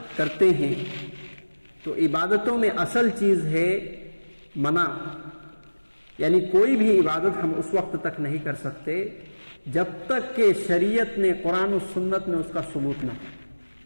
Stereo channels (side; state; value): both; inverted; correlation -1.00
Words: کرتے ہیں تو عبادتوں میں اصل چیز ہے منع، یعنی کوئی بھی عبادت ہم اس وقت تک نہیں کر سکتے جب تک کہ شریعت نے قرآن و سنت میں اس کا ثبوت نہ ہو۔